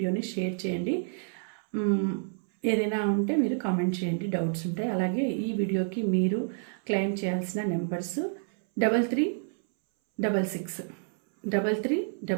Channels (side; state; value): left; silent; 59 dB below the other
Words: షేర్ చేయండి. ఏదైనా ఉంటే మీరు కామెంట్ చేయండి, డౌట్స్ ఉంటాయి. అలాగే ఈ వీడియోకి మీరు క్లెయిమ్ చేయాల్సిన నెంబర్స్